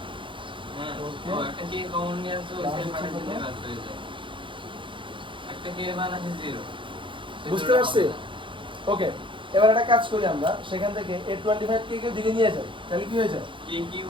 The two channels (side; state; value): left; late; 0.24 ms